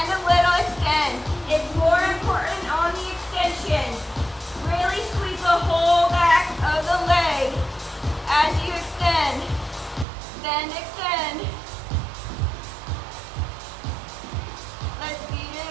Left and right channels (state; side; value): drops out; left; at 10.1 s